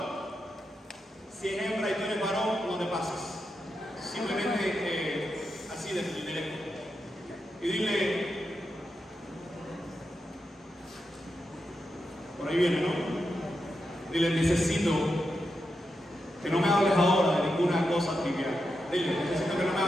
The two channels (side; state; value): both; normal; correlation 0.87